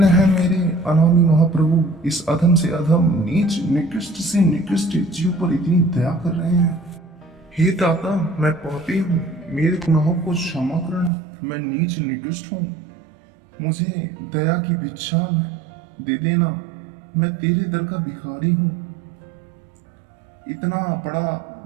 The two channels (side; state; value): left; drops out; at 11.1 s